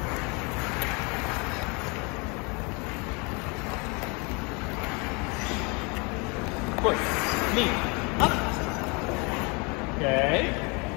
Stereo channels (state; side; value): quieter; right; 30.3 dB